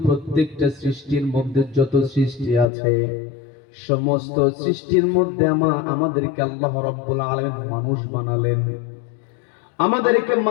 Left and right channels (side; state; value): right; drops out; at 2.7 s